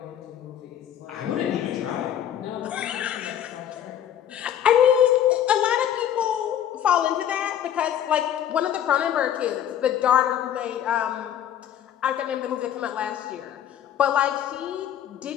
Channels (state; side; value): quieter; right; 10.3 dB